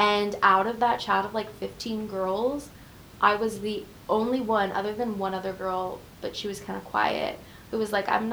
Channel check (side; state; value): both; identical; correlation 1.00